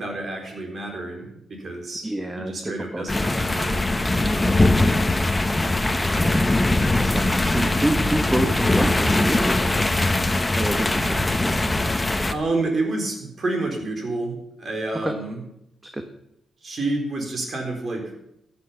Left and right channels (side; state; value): both; normal; correlation 0.94